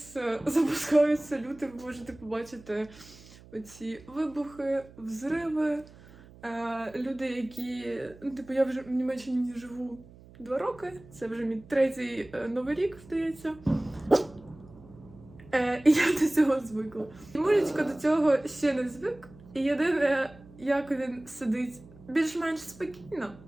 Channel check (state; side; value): noise; right; hum, 22 dB below the sound